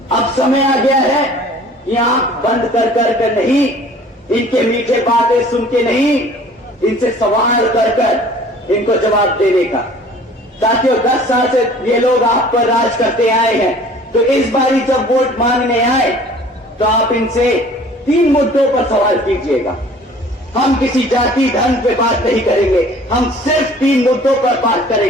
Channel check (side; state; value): both; normal; correlation 0.50